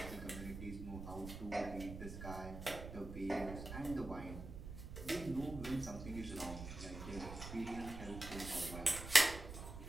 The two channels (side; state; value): right; noise; rumble, 9 dB below the sound